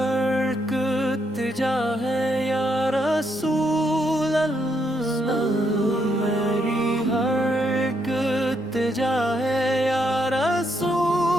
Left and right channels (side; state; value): both; normal; correlation 0.76